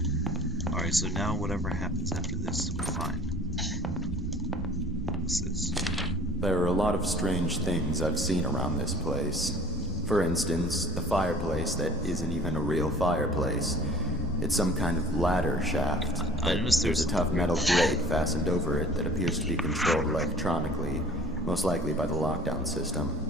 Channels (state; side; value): normal; both; correlation 0.48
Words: Alright, so now whatever happens after this, we're fine. What's this? There are a lot of strange things I've seen around this place. For instance, the fireplace that isn't even a real fireplace. It's some kind of ladder shaft. I noticed There's a tough metal grate fastened over it that appears to be controlled electronically, most likely by the lockdown system.